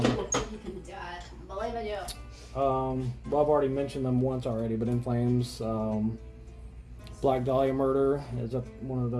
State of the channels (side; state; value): both; identical; correlation 1.00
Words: God. Believe in you. Well, I've already mentioned them once already, but In Flames, Black Dahlia Murder is one of the